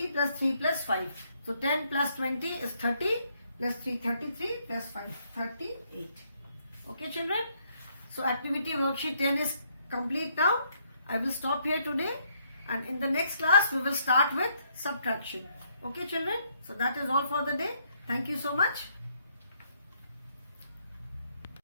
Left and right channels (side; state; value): both; inverted; correlation -0.72